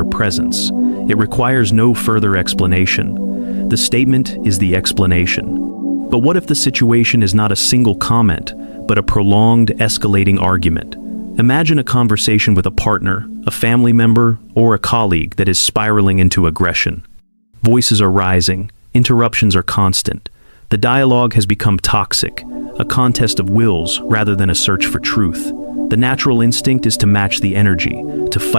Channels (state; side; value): inverted; both; correlation -1.00